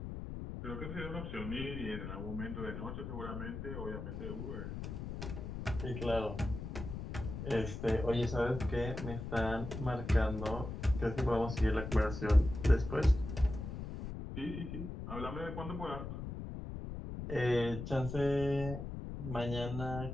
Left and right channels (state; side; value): noise; left; rumble, 7 dB below the sound